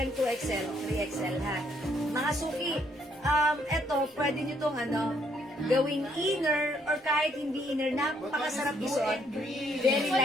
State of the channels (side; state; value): both; normal; correlation 0.69